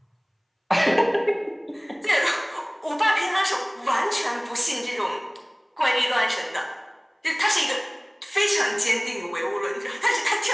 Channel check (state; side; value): identical; both; correlation 1.00